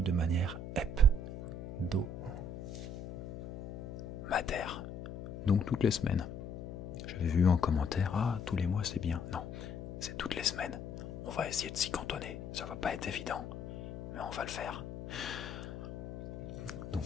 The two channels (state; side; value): noise; left; hum, 9 dB below the sound